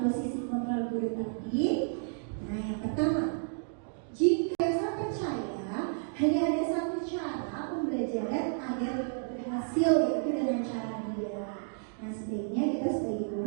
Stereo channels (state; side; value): silent; left; digital silence